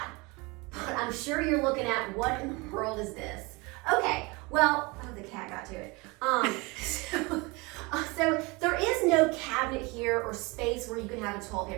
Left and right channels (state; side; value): quieter; left; 26.0 dB